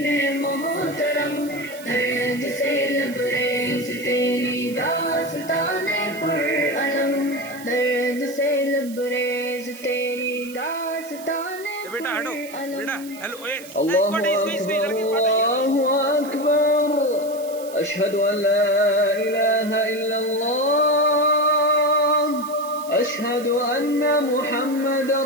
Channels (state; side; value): noise; right; hiss, 18 dB below the sound